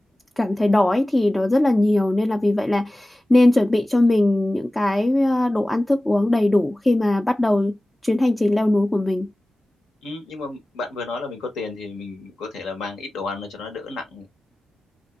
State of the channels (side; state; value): both; normal; correlation 0.97